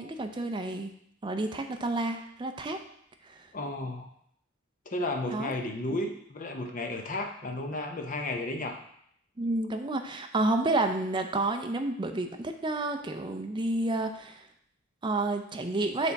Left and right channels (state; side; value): normal; both; correlation 0.43